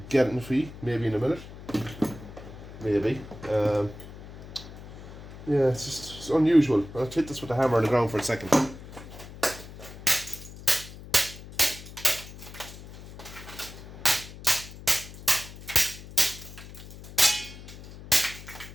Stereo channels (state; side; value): noise; left; hum, 15 dB below the sound